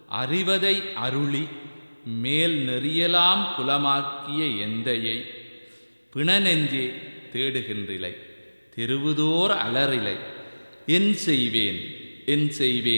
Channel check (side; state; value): both; inverted; correlation -1.00